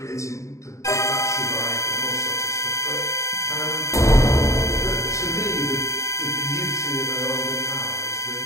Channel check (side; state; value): right; late; 0.15 ms